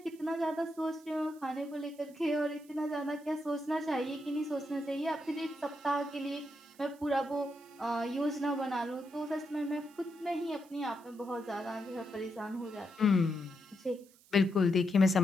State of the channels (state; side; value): noise; right; hiss, 27 dB below the sound